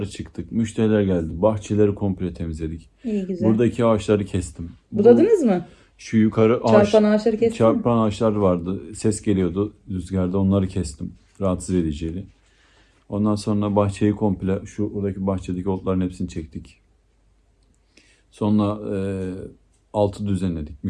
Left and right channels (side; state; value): both; identical; correlation 1.00